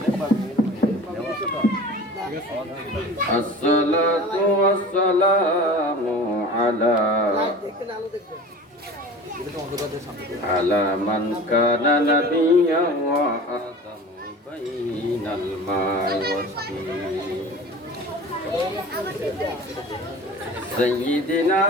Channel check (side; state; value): both; normal; correlation 0.38